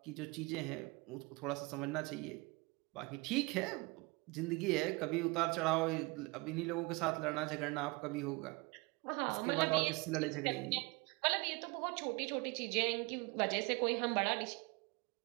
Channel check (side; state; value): left; quieter; 26.5 dB